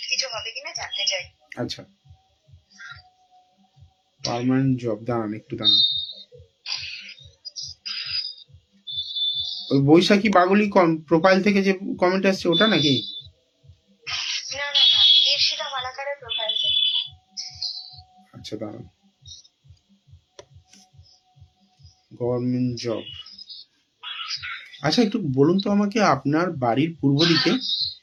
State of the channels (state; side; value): identical; both; correlation 1.00